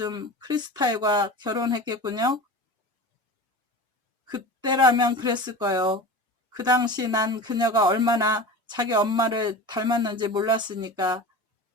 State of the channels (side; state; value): both; normal; correlation 0.32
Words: 크리스탈과 결혼했겠군요. 그때라면 그랬을 거요. 그 당시 난 그녀가 얼마나 자기 엄마를 닮았는지 몰랐으니까.